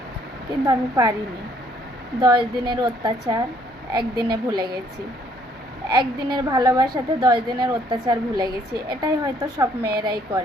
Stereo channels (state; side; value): normal; both; correlation 0.64